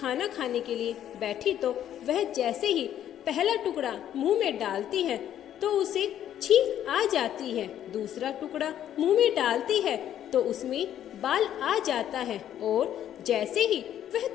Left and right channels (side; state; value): right; quieter; 10.8 dB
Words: खाने के लिए बैठी तो वह जैसे ही पहला टुकड़ा मुंह में डालती है तो उसे छींक आ जाती है। दूसरा टुकड़ा मुंह में डालती है तो उसमें बाल आ जाता है और जैसे ही वह